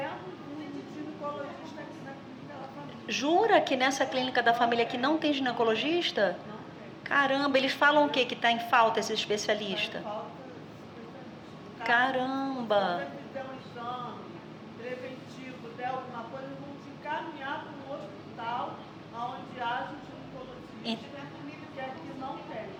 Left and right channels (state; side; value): identical; both; correlation 1.00